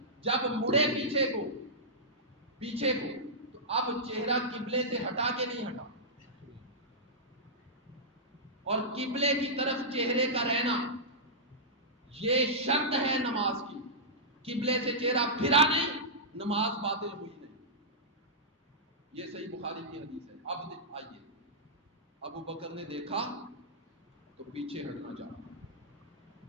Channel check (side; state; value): both; normal; correlation -0.14